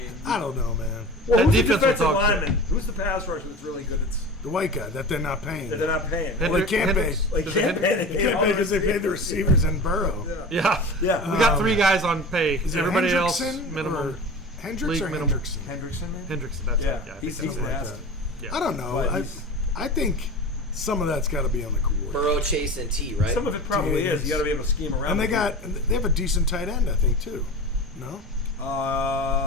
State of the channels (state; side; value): normal; both; correlation 0.33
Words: I don't know, man. well, That who's the defense will defensive talk to. lineman? Who's the pass rusher that's really good? It's The white guy that they're not paying. that they're not paying. Well, they can't pay. Like Is it can't pay. They can't pay because they paid the receivers and Burrow. Yeah. Yeah. We got 3 guys on pay. Is it Everybody else Hendrickson minimum. or Hendricks League or minimum. Hendrickson? Hendrickson, man. Hendrickson. That's Yeah, it. Yeah. I he's think that's right. nasty. Yeah. I don't know. But I he's- think some of that's got to be on the coordinator. Burrow, Chase, and T, right? Some of it probably is. You got to be able to scheme around. And they with have a decent tight end, I think, too. No?